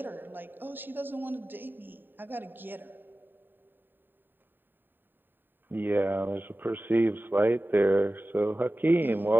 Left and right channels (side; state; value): left; late; 0.093 ms